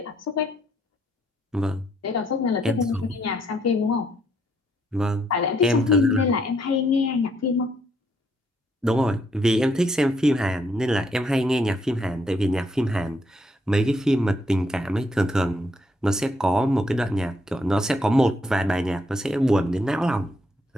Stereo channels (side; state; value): both; normal; correlation 0.73